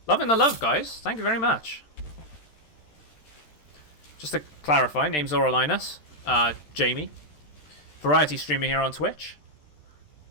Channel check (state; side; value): late; right; 13 ms